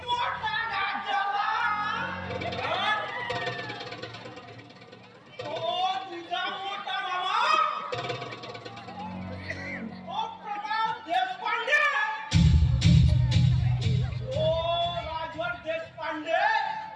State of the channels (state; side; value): identical; both; correlation 1.00